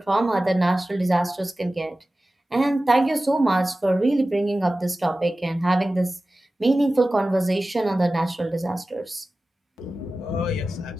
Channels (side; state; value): both; normal; correlation 0.96